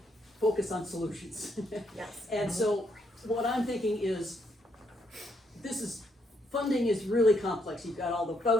focus on solutions. Yes. And so what I'm thinking is, funding is really complex. You've got all the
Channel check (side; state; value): both; normal; correlation 0.75